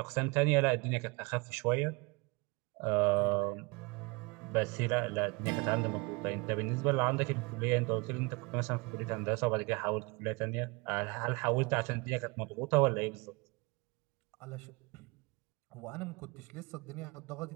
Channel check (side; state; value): left; quieter; 27.3 dB